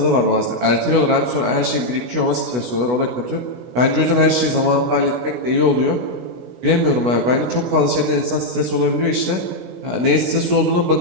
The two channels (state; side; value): late; left; 16 ms